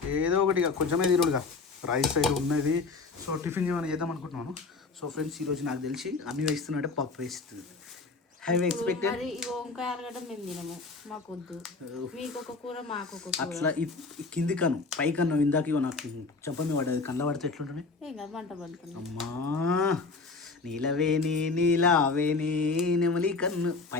ఏదో ఒకటి కొంచెమే తిరుగుడుగా రైస్ అయితే ఉన్నది. సో టిఫిన్ ఏమైనా చేద్దాం అనుకుంటున్నాను. సో ఫ్రెండ్స్ ఈరోజు నాకు తెలిసి అన్ని వేస్తున్నట్టే పప్పు వేస్తుంది. హ్యావ్ ఎక్స్పెక్టెడ్ అట్లా కింది కను పై కన్ను ఇందాక నాకు చెప్పండి పడ్డది. కంద పడితే ఎట్లుంటుంది? అమ్మా నీలావేని నెమలి కన్ను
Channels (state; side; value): quieter; right; 4.1 dB